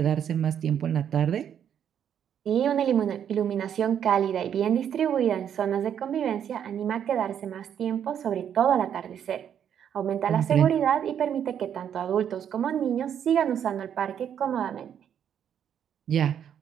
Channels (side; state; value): left; quieter; 9.0 dB